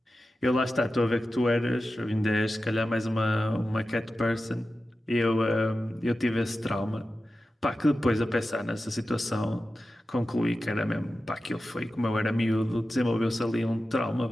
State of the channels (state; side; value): normal; both; correlation 0.93